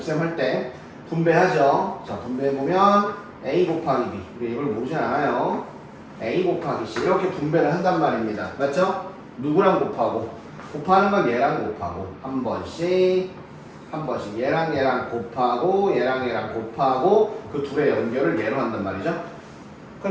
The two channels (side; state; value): both; identical; correlation 1.00